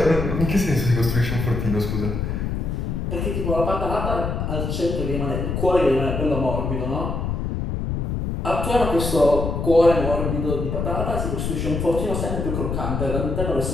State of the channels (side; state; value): left; noise; rumble, 2 dB below the sound